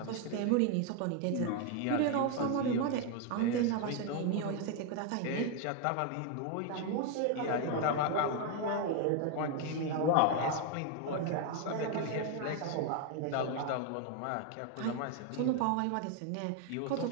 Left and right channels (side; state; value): both; different; correlation 0.01